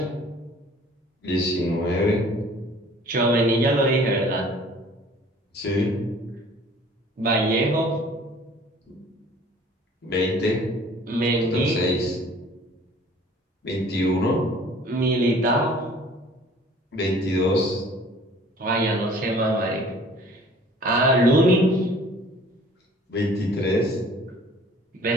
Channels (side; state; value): both; normal; correlation 0.51